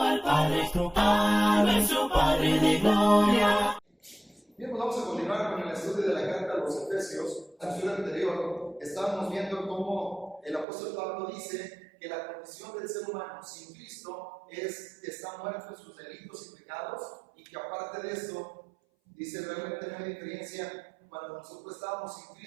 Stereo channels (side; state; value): left; drops out; at 10.7 s